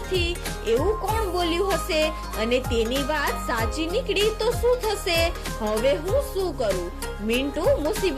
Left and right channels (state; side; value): identical; both; correlation 1.00